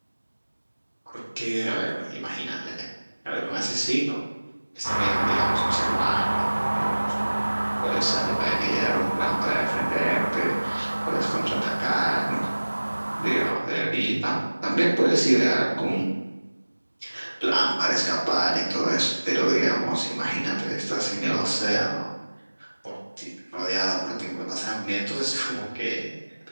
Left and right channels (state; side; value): inverted; both; correlation -1.00